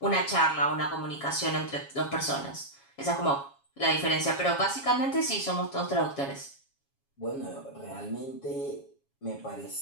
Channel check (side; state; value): right; late; 7.2 ms